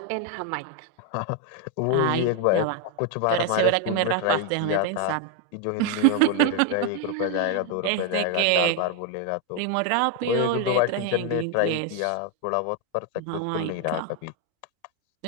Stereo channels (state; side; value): different; both; correlation 0.01